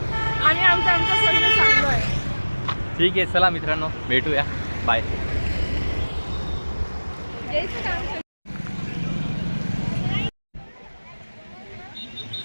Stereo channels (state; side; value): inverted; both; correlation -1.00